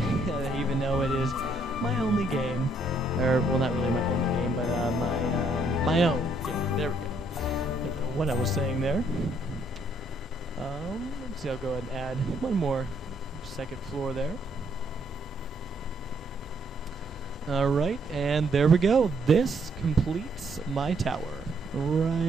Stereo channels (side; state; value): both; normal; correlation 0.69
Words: even though it is my only game. Or, well, not really my only game, but my own game. There we go. I don't know what I was saying there. Let's see, I'll go ahead and add one more second floor there. Alright, and there we go. This completes my tower.